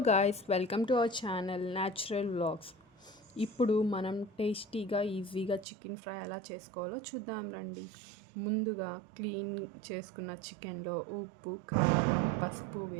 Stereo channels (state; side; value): drops out; left; at 5.7 s